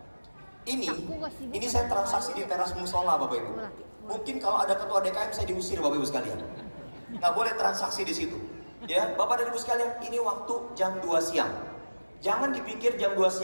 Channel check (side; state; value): both; inverted; correlation -1.00